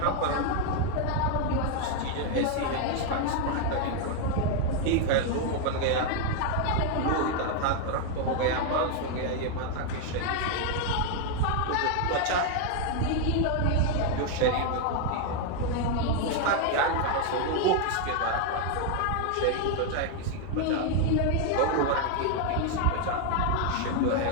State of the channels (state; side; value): different; both; correlation 0.00